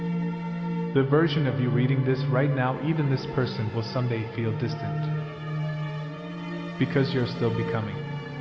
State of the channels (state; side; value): identical; both; correlation 1.00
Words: The version of you reading this right now, even this person will someday feel distant, because you're still becoming,